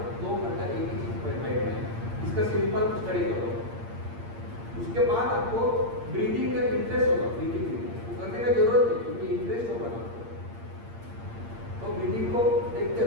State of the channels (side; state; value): left; late; 8.7 ms